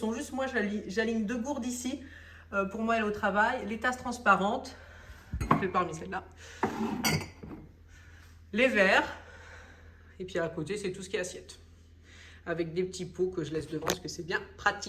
juste, moi j'aligne deux gourdes ici pour moi aller au travail. Les tasses transparentes, je vais parmi celles-là. Les verres, et puis à côté c'est tout ce qui est assiette. Avec des petits pots que je laisse devant parce que c'est bien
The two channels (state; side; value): identical; both; correlation 1.00